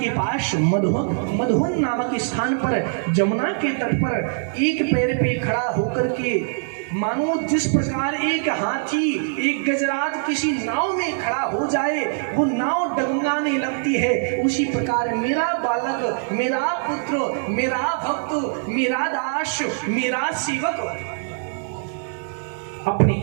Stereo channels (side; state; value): left; silent; digital silence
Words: पास मधुवन नामक स्थान पर जमुना के तट पर एक पैर पे खड़ा होकर के मानो जिस प्रकार एक हाथी एक गजराज किसी नाव में खड़ा हो जाए वो नाव डगमगाने लगती है, उसी प्रकार मेरा बालक, मेरा पुत्र, मेरा भक्त, मेरा दास, मेरा सेवक अपने